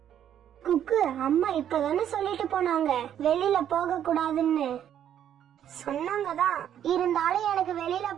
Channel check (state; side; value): quieter; left; 10.1 dB